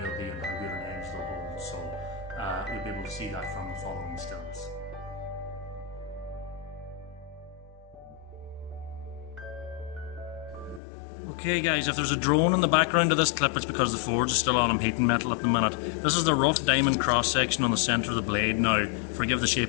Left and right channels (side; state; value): right; drops out; at 10.8 s